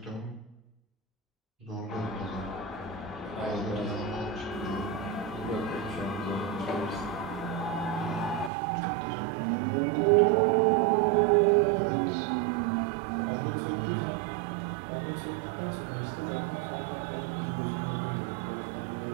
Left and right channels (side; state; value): left; drops out; at 8.5 s